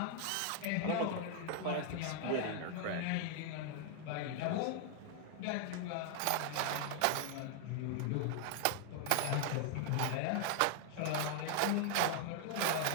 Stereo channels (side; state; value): both; different; correlation 0.00